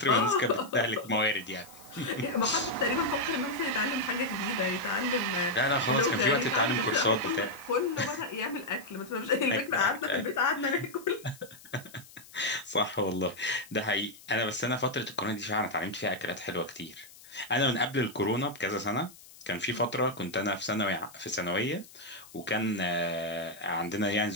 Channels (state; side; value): noise; left; hiss, 21 dB below the sound